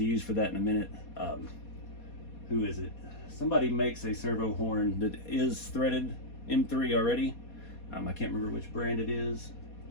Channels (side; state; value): right; late; 4.2 ms